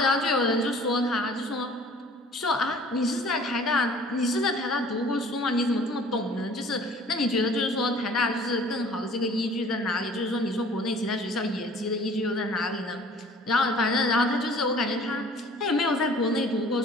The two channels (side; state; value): both; normal; correlation 0.50